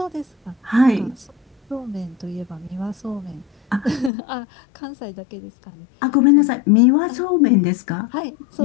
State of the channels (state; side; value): drops out; right; at 4.1 s